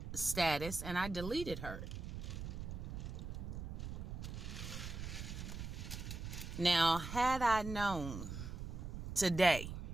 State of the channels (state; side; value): noise; right; rumble, 6 dB below the sound